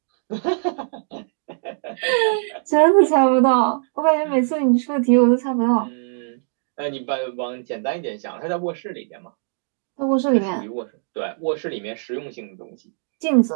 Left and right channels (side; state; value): left; silent; digital silence